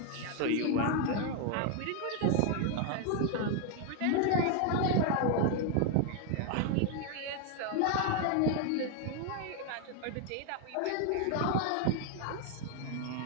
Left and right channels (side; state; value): both; different; correlation 0.01